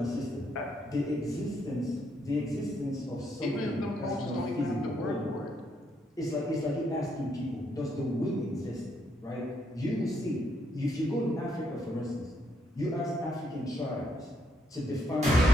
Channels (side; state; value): both; normal; correlation 0.75